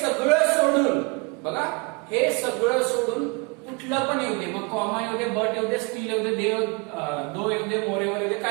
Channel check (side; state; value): left; quieter; 29.4 dB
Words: सोडून, बघा हे सगळं सोडून कुठलं पण येऊ दे, मग कॉमा येऊ दे, बट येऊ दे, स्टील येऊ दे, दो येऊ दे, मोरेवर येऊ दे,